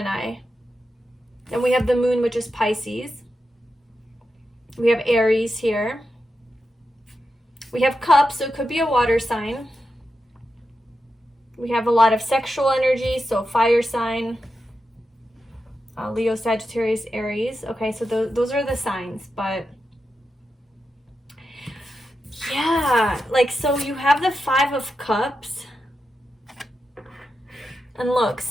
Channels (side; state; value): both; normal; correlation 0.89